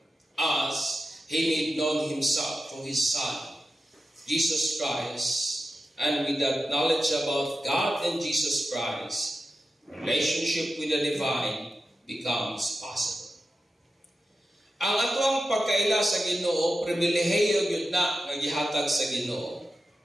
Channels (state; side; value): normal; both; correlation 0.91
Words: as He made known Himself through His Son, Jesus Christ. And with that knowledge about God and Jesus Christ, relationship with the divine becomes possible. Ang atong pagkaila sa Ginoo, pribilehiyo gyud na nga gihatag sa Ginoo.